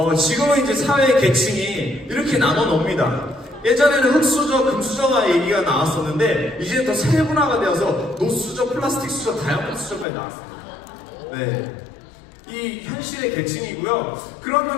지금은 이제 사회 계층이 이렇게 나눠 놓습니다. 예전에는 흙수저, 금수저가 얘기가 나왔었는데 이제 더 세분화가 되어서 노수저, 플라스틱 수저, 다이아몬드 수저까지 나왔습니다. 네, 이 현실의 계층이고요.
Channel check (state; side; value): drops out; right; at 10.1 s